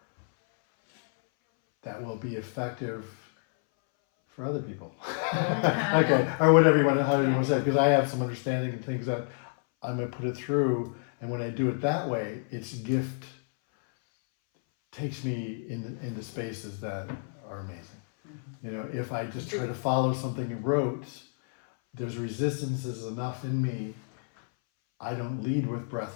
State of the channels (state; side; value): silent; right; 58 dB below the other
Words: will be effective for other people. Okay, or whatever you want to, how you want to say it, because I have some understanding of things that I'm going to put it through, and when I do it that way, its gift takes me in the spaces that are amazing. You know, if I just try to follow something you wrote, there's resistances enough in me. I don't lead with